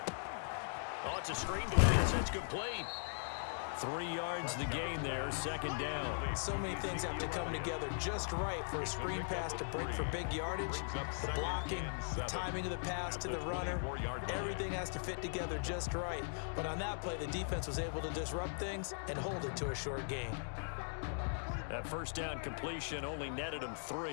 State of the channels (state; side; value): silent; right; digital silence